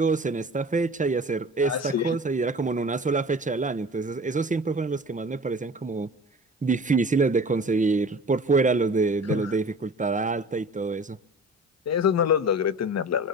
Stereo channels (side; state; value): both; normal; correlation 0.40